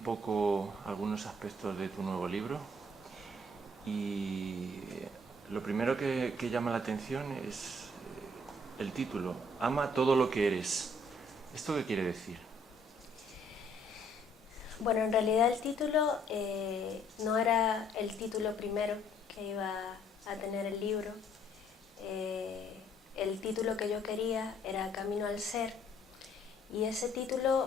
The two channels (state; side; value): normal; both; correlation 0.64